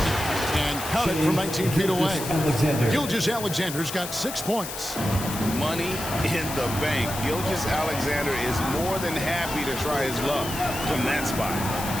And count it from 19 feet away. Gilgeous-Alexander's got 6 points. Money in the bank. Gilgeous-Alexander is more than happy to try his luck from that spot.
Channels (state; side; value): noise; left; hiss, 8 dB below the sound